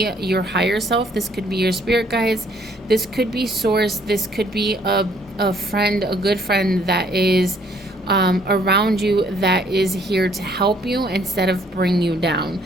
your higher self, this could be your spirit guides, this could be source, this could be a friend, a good friend that is around you, that is here to help you instead of bring you down.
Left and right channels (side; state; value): both; normal; correlation 0.63